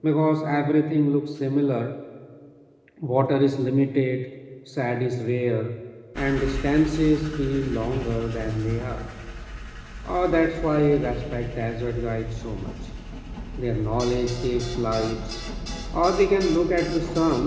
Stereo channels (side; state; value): both; identical; correlation 1.00